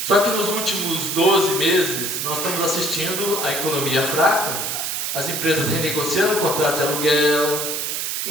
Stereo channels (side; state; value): right; noise; hiss, 2 dB below the sound